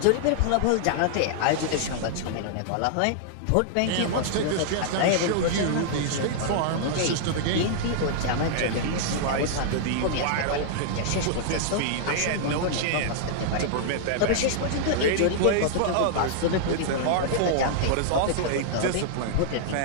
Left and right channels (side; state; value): both; different; correlation -0.01